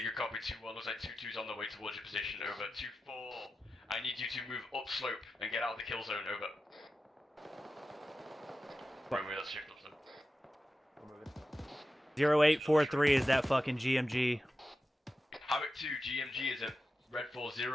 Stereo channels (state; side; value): normal; both; correlation 0.92